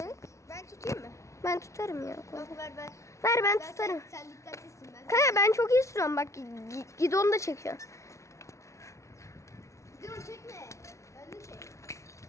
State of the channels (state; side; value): late; right; 0.14 ms